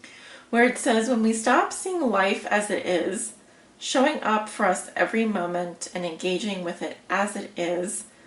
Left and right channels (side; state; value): both; identical; correlation 1.00